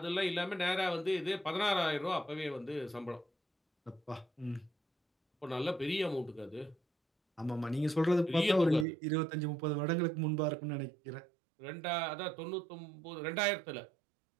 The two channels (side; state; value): left; drops out; at 8.8 s